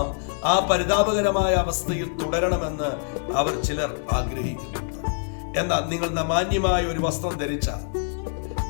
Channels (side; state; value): right; silent; digital silence